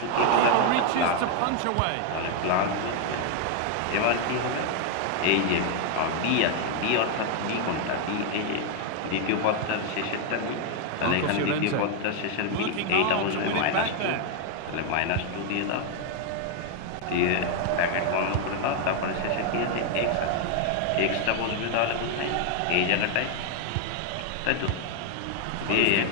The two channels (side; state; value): both; different; correlation 0.01